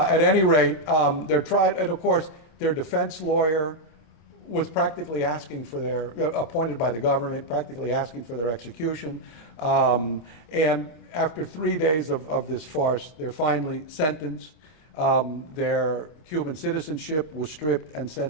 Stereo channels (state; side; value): late; right; 26 ms